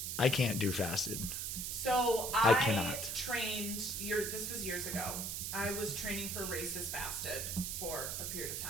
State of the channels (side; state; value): right; noise; hiss, 3 dB below the sound